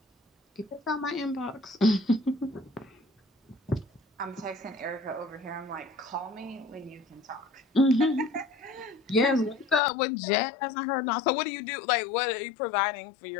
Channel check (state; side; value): drops out; right; at 9.8 s